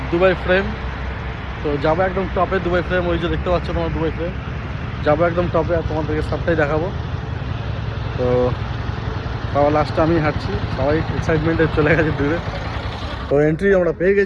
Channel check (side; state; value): both; identical; correlation 1.00